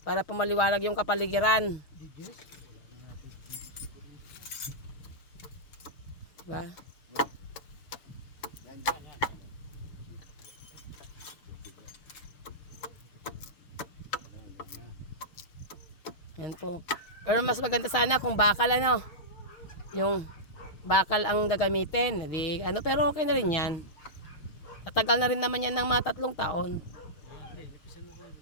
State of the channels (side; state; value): right; late; 6.4 ms